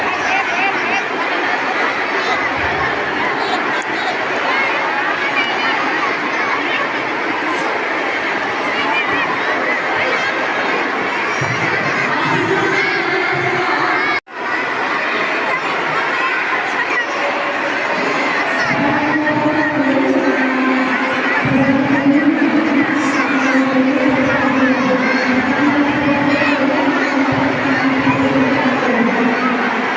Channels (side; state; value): both; identical; correlation 1.00